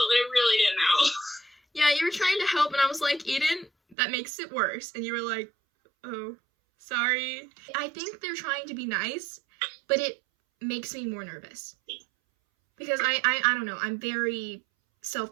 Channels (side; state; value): left; drops out; at 4.0 s